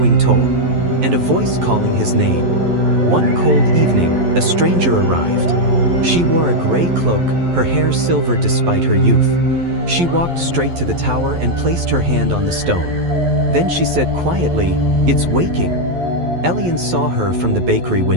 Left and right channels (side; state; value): left; late; 11 ms